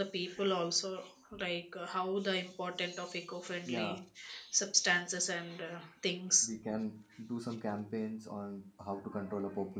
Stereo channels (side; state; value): both; identical; correlation 1.00